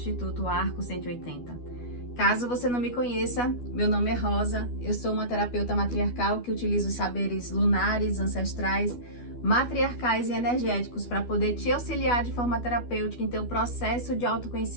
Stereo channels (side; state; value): right; late; 12 ms